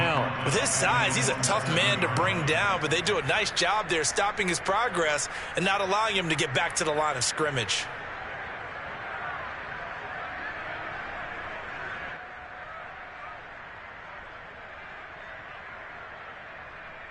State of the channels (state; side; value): identical; both; correlation 1.00